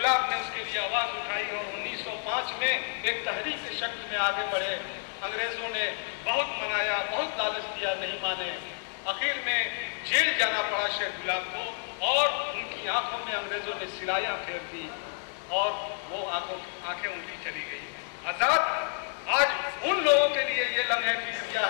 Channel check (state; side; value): silent; right; digital silence